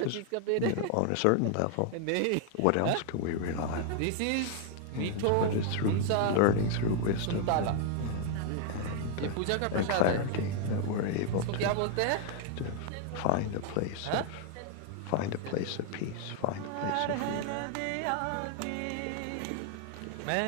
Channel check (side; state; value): both; different; correlation 0.00